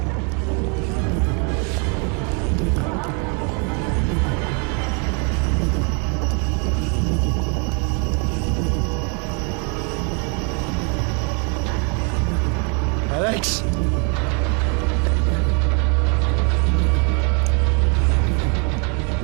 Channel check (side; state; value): left; quieter; 36.4 dB